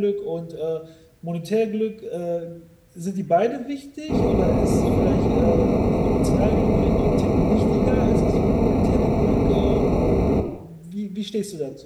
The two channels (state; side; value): identical; both; correlation 1.00